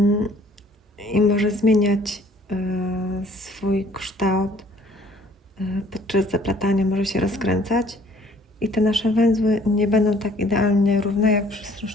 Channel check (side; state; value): both; normal; correlation 0.57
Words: i może zmieniać swój kształt podczas zaplatania, może się rozkręcać i te nasze węzły nie będą tak idealnie równe jak przy